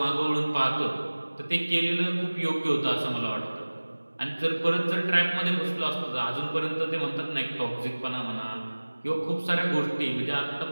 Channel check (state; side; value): inverted; both; correlation -1.00